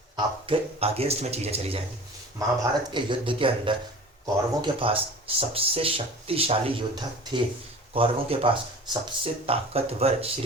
आपके अगेंस्ट में चीज़ें चली जाएंगी। महाभारत के युद्ध के अंदर कौरवों के पास सबसे शक्तिशाली योद्धा थे, कौरवों के पास सबसे ताकतवर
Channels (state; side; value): normal; both; correlation 0.40